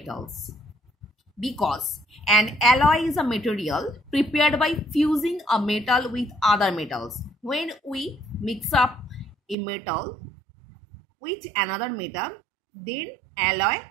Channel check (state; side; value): drops out; left; at 9.6 s